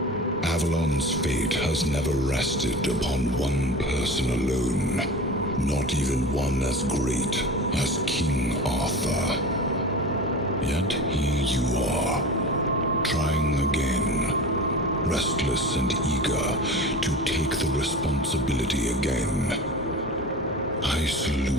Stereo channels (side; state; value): both; normal; correlation 0.32